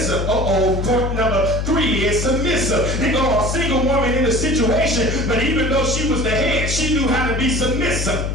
Point number 3 is submissive. They go a single woman in a situation, but even though she was the head, she knew how to be submissive.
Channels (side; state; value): left; noise; hum, 2 dB below the sound